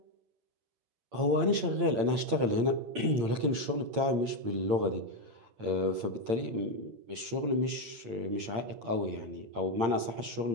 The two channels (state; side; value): late; left; 8.7 ms